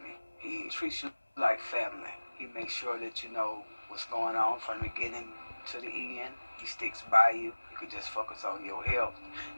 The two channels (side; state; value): both; inverted; correlation -1.00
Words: me. He treats you like family. He makes sure that you know what's going on from the beginning to the end. He sticks by you. You can just focus on your health